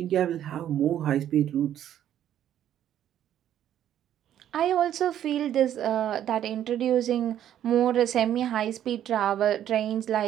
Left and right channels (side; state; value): left; quieter; 10.9 dB